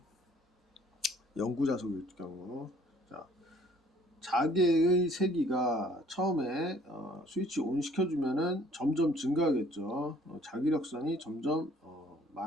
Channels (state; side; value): normal; both; correlation 0.57